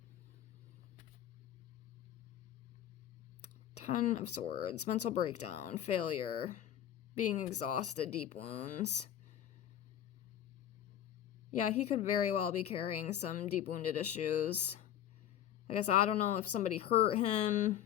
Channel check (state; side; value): quieter; right; 10.9 dB